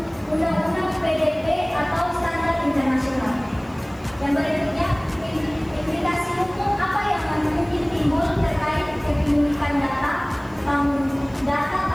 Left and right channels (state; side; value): noise; left; hiss, 29 dB below the sound